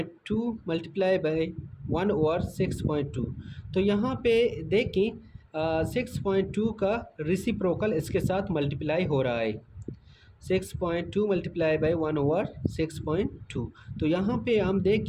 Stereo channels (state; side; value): identical; both; correlation 1.00